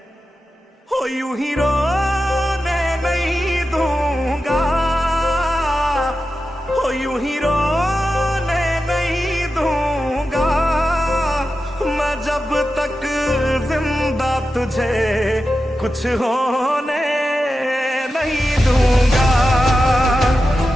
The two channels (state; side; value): normal; both; correlation 0.91